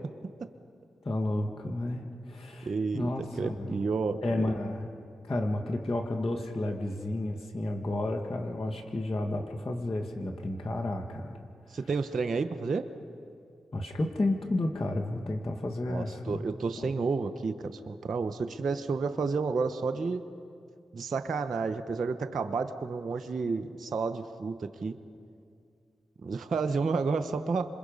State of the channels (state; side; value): normal; both; correlation 0.88